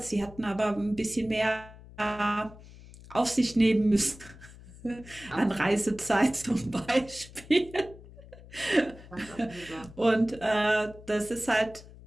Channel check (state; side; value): noise; left; hum, 19 dB below the sound